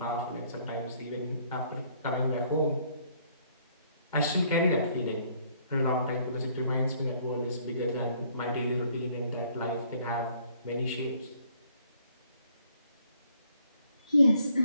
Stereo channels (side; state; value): both; inverted; correlation -0.64